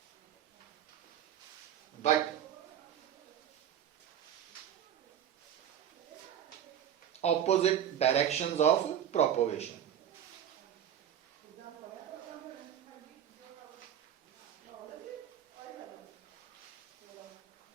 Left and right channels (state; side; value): quieter; left; 9.8 dB